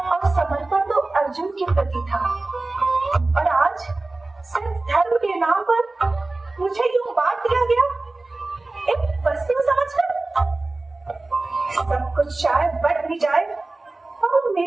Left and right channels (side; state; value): left; quieter; 3.1 dB